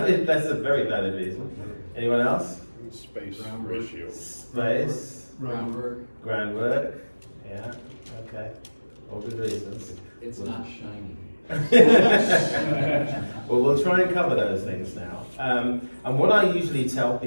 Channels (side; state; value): both; inverted; correlation -1.00